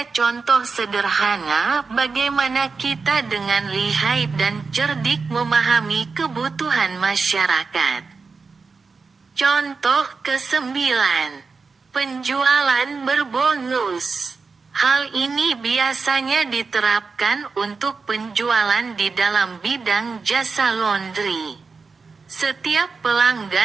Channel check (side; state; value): left; quieter; 4.6 dB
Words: contoh sederhana bagaimana kita dengan lihai dan cerdik memahami kebutuhan masyarakat. Contoh ke-9. Penjualan berbonus. Hal ini biasanya diterapkan untuk penjualan di dalam bidang jasa laundry. Setiap